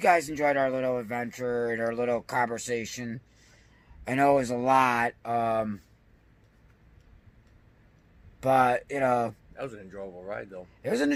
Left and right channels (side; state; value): both; identical; correlation 1.00